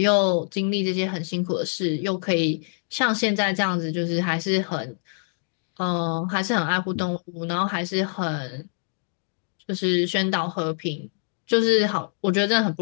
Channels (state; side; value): silent; right; digital silence